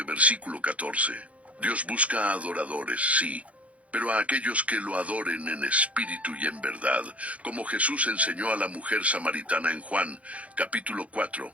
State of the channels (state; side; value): late; left; 0.066 ms